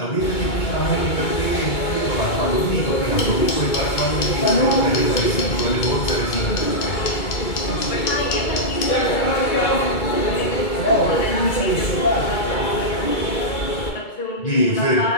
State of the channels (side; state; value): right; late; 2.2 ms